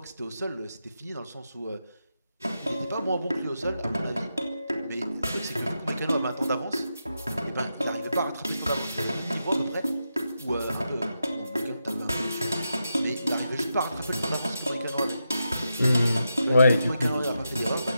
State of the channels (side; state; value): both; inverted; correlation -0.86